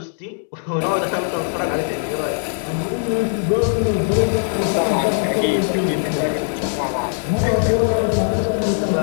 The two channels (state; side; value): silent; right; 66 dB below the other